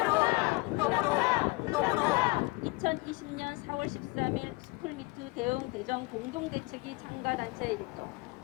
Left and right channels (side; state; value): right; quieter; 24.7 dB